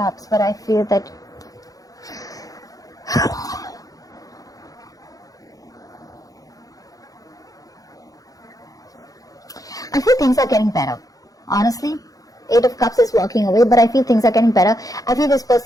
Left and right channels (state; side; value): late; right; 0.17 ms